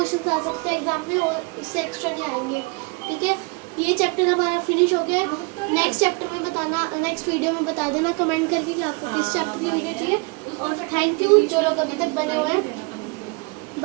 आ सकते हैं एग्जाम में और इससे एक्स्ट्रा नहीं आएंगे, ठीक है। ये चैप्टर हमारा फिनिश हो गया है। नेक्स्ट चैप्टर में बताना, नेक्स्ट वीडियो में बता देना कमेंट करके कि आपको किस चैप्टर की वीडियो चाहिए। उसमें और तो थैंक यू जो लोग अभी तक बने हुए हैं।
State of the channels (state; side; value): quieter; left; 29.9 dB